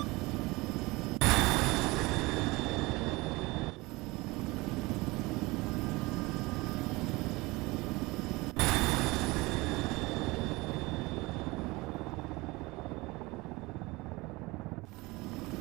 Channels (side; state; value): left; quieter; 22.8 dB